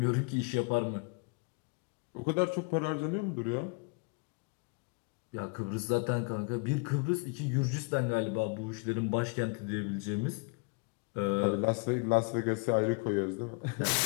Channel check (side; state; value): right; quieter; 31.4 dB